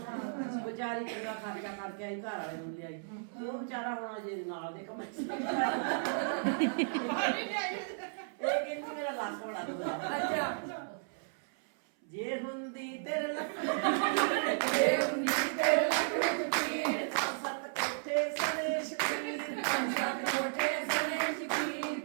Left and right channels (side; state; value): left; silent; 55 dB below the other